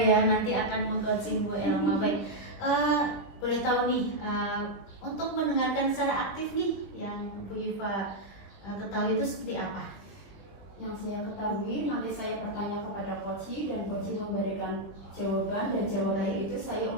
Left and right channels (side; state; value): right; late; 20 ms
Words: ya, nanti akan mengcoaching Bu Elma. Baik, boleh tahu nih untuk mendengarkan secara aktif nih yang Bu Iva ketahui itu seperti apa? Yang saya ketahui, nanti saya bertanya kepada coach dan coach memberikan jawaban, dan jawaban itu saya